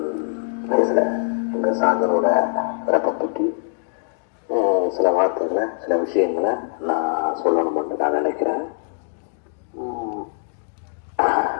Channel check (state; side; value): silent; right; digital silence